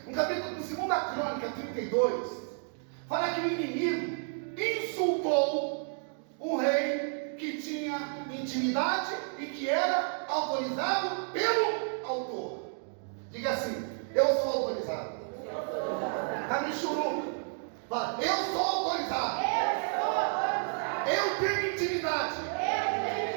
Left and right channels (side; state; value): left; silent; 57 dB below the other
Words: No capítulo Segunda Crônica 32, fala que o inimigo insultou um rei que tinha intimidade e que era autorizado pelo autor. Diga assim: eu sou autorizado. Está me churuca. Fala: eu sou autorizado. Eu tenho intimidade